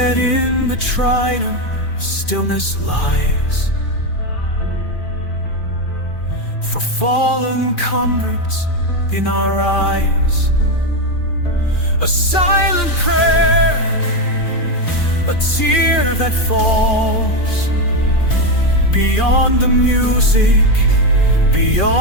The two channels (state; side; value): late; right; 2.4 ms